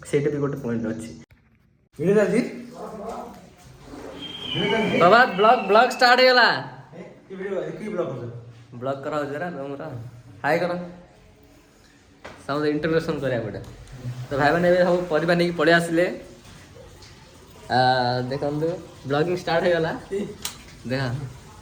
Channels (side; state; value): both; identical; correlation 1.00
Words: सेटा भी गोटे पॉइंट अछि बाबा ब्लॉग स्टार्ट हेला की वीडियो की ब्लॉग करा जरा हमरा हाय करो सब इंट्रोडक्शन करिया पड़े तो भाई मैंने सब परिवार नहीं पड़े आसिले देखो ब्लॉगिंग स्टार्ट हो गला देखा